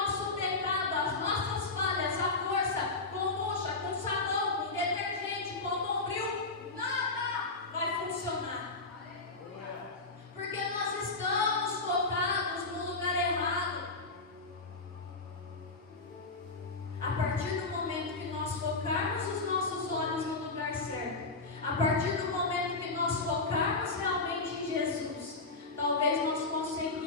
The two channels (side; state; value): right; quieter; 3.6 dB